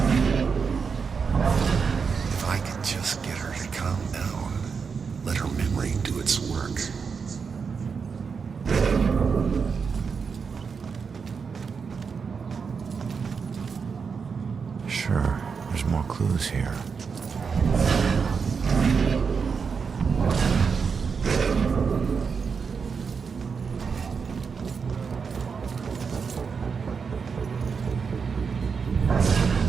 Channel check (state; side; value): quieter; left; 5.7 dB